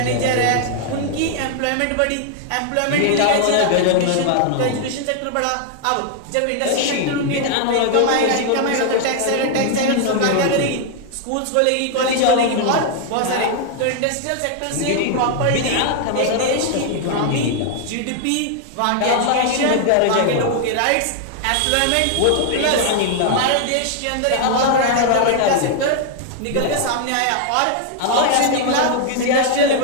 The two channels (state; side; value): different; both; correlation 0.00